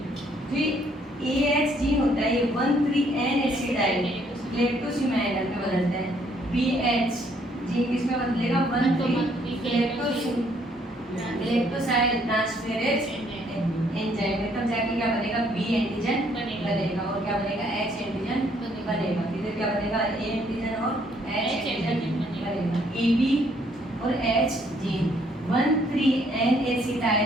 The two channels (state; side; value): normal; both; correlation 0.67